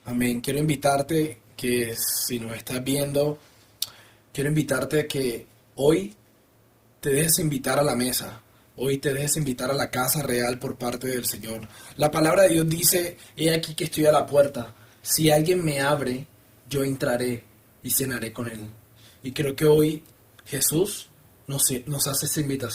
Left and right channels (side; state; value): both; identical; correlation 1.00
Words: amén. Quiero invitarte que si nos estás viendo, quiero invitarte a que hoy te dejes invitar a la mesa. Hoy te dejes invitar a la casa real por parte del Señor. La palabra de Dios dice, he aquí que estoy a la puerta. Si alguien me abre, yo entraré y cenaré con él. Y creo que hoy Jesús nos hace esta